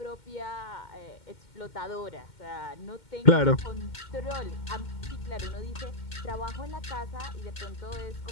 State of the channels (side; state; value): right; late; 2.1 ms